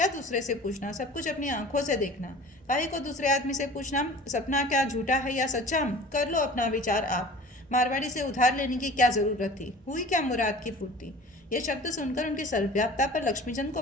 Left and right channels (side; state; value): both; normal; correlation 0.42